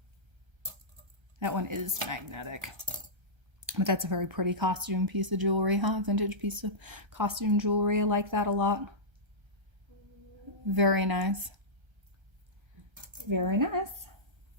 That one is magnetic. But that's a very pretty costume piece of jewelry, huh? Vintage piece of costume jewelry. I like that a lot. Very nice. Very nice.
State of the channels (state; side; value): late; left; 1.3 ms